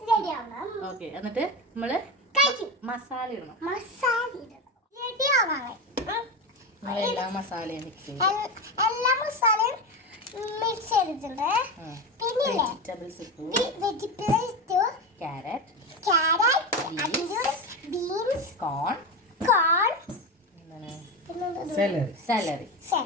റെഡി ആവണം. ഓക്കെ, എന്നിട്ട് നമ്മള് കഴിക്കും. മസാല ഇടണം. മസാല ഇടണം. റെഡി ആവണം. എല്ലാ മസാലയും മിക്സ് ചെയ്യും. എല്ലാ മസാലയും മിക്സ് ചെയ്തിട്ടുണ്ട്. പിന്നെ വെജിറ്റബിൾസ് ഇട്ടു. വെജിറ്റബിൾസ്, ക്യാരറ്റ്, ബീൻസ്, കോൺ, സാലറി,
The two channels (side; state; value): both; normal; correlation 0.19